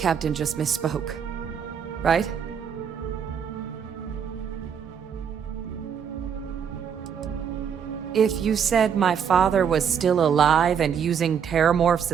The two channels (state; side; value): quieter; left; 7.6 dB